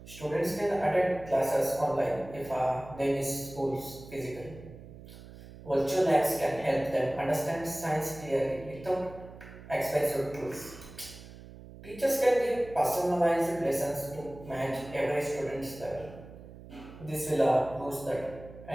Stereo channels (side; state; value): right; noise; hum, 17 dB below the sound